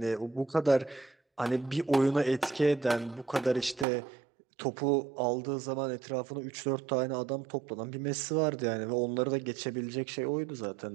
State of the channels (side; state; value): left; drops out; at 3.9 s